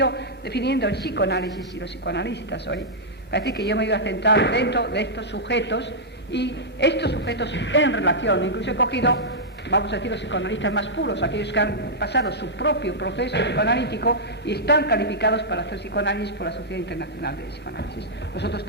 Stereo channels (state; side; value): normal; both; correlation -0.09